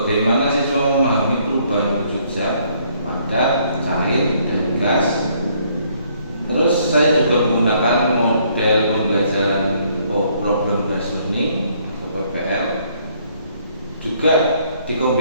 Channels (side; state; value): both; inverted; correlation -0.66